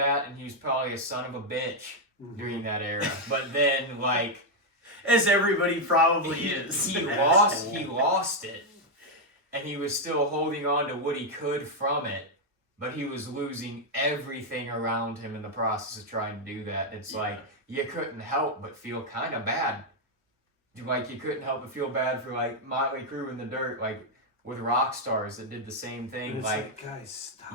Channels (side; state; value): both; normal; correlation 0.01